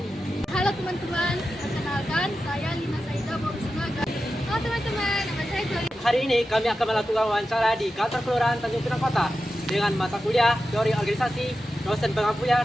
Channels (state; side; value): normal; both; correlation 0.91